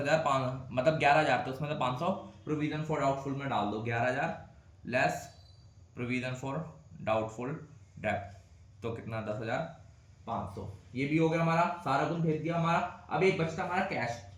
मतलब 11,000, तो उसमें से 500 प्रोविजन फॉर डाउटफुल में डाल दो, 11,000 less provision for doubtful debt, तो कितना 10,500। ये भी हो गया हमारा, सारा कुछ भेज दिया हमारा। अब एक बचता हमारा कैश।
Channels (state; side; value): identical; both; correlation 1.00